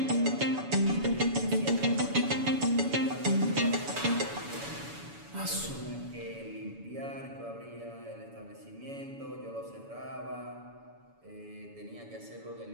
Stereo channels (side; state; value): left; late; 7.0 ms